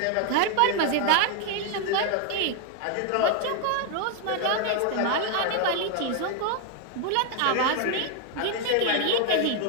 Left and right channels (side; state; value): both; different; correlation 0.00